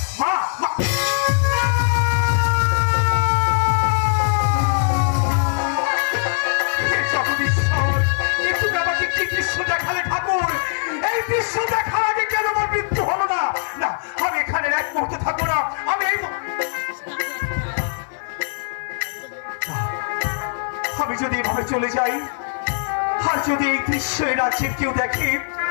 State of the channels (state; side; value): silent; right; 65 dB below the other